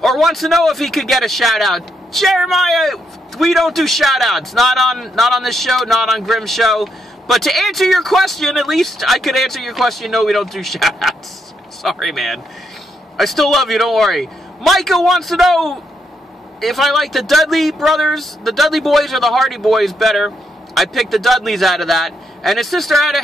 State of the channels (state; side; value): normal; both; correlation 0.78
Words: Or wants to know if he could get a shout-out. Jeremiah, we don't do shout-outs. Not on this show, not on Grimm's show. But to answer your question, at least I could answer your question, no, we don't do shout-outs. Sorry, man. I still love you, don't worry. Micah wants to know if I like the Dudley brothers, the Dudley boys, or the Hardy boys better. I picked the Dudleys out of that. And his sister